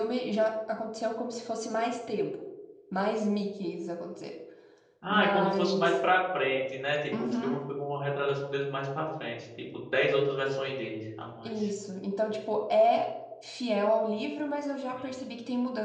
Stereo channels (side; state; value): both; identical; correlation 1.00